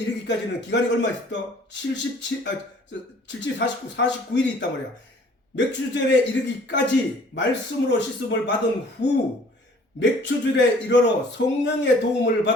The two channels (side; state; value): both; normal; correlation 0.54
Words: 기간이 얼마 있었다? 49일이 있단 말이야. 맥추절에 이르기까지 말씀으로 씻음을 받은 후 맥추절에 이르러 성령의 도움을